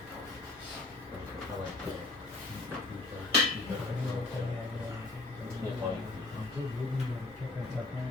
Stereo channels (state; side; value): quieter; right; 3.2 dB